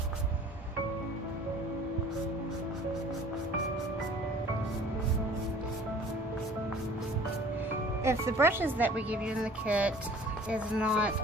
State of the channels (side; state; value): both; normal; correlation 0.49